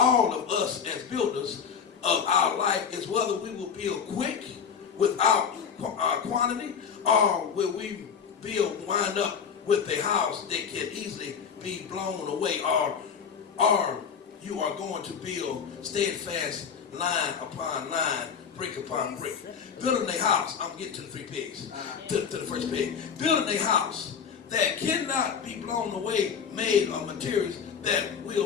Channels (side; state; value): right; quieter; 6.8 dB